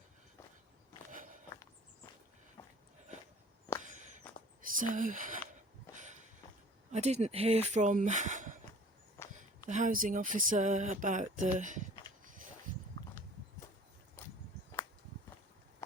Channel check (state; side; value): normal; both; correlation 0.48